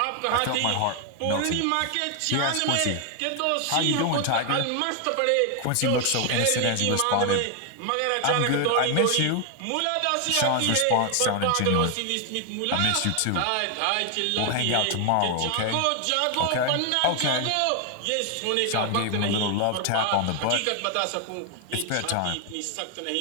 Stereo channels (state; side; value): different; both; correlation 0.01